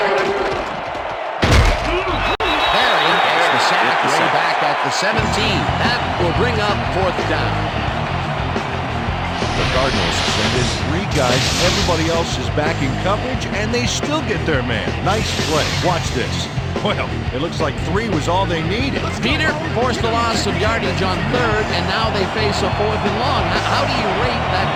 Barry gets the sack way back at the 17. That will bring up fourth down. The Cardinals send in 3 guys. Everybody else is back in coverage, and they still get their man. Nice play. Watch this. Well, it looks like 3 was all they needed. Peter forced a loss of yardage on third, and now they face a 4th and long. How do you rate that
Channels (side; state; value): both; identical; correlation 1.00